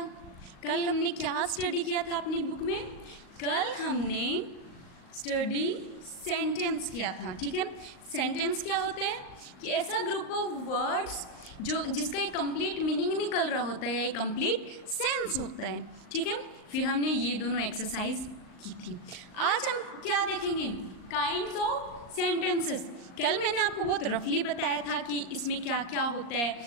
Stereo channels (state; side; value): late; right; 39 ms